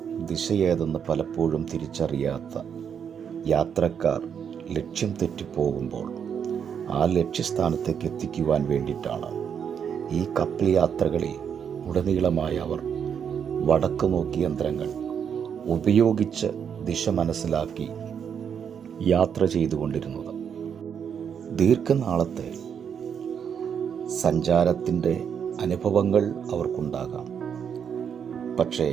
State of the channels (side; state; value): left; quieter; 7.7 dB